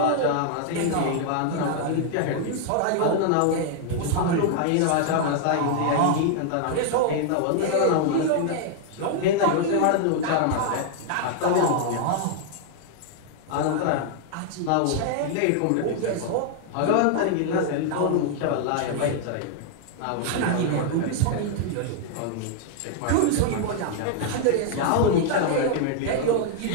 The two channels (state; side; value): different; both; correlation 0.00